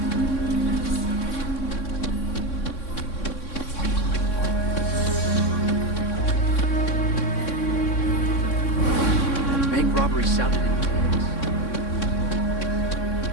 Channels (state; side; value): late; right; 3.6 ms